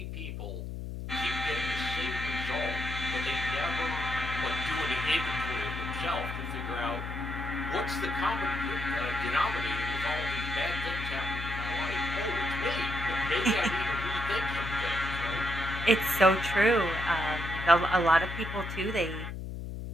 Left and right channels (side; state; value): left; noise; hum, 6 dB below the sound